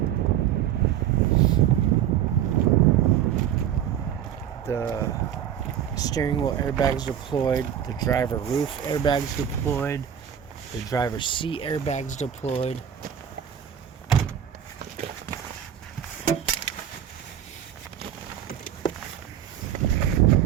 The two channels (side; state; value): left; quieter; 9.7 dB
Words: The steering wheel airbags deployed, the driver roof airbags deployed, the driver's seat airbags deployed.